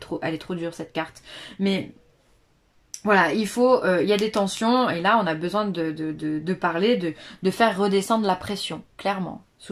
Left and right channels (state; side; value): identical; both; correlation 1.00